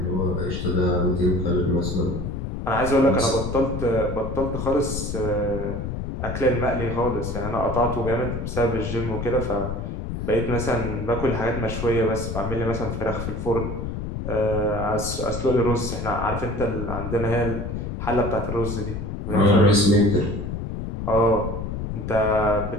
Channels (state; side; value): noise; left; rumble, 5 dB below the sound